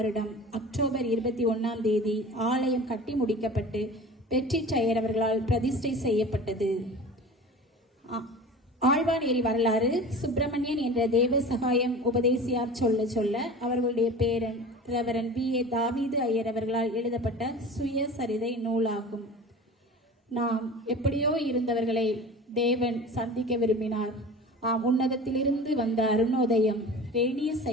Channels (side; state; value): both; normal; correlation 0.37